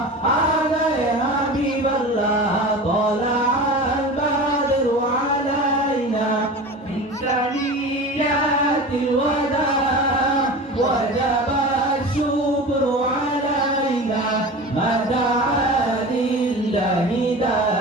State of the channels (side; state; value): both; normal; correlation 0.33